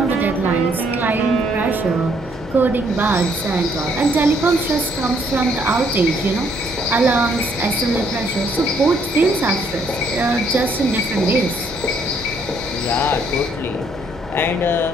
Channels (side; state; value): both; normal; correlation 0.68